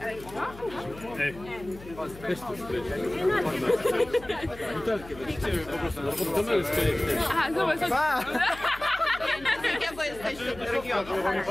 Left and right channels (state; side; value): noise; left; hum, 18 dB below the sound